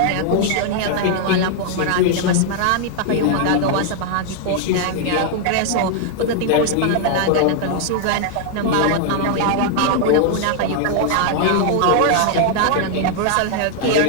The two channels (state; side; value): different; both; correlation 0.00